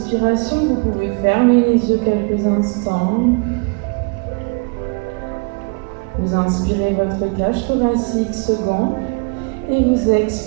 Vous pouvez fermer les yeux quelques instants. Vous inspirez votre cage thoracique se gonfle et vous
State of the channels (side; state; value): left; quieter; 33.5 dB